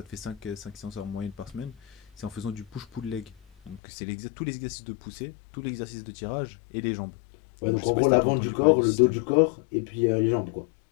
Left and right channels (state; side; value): drops out; right; at 3.8 s